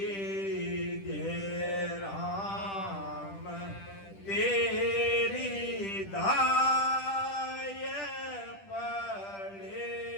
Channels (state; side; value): late; right; 10 ms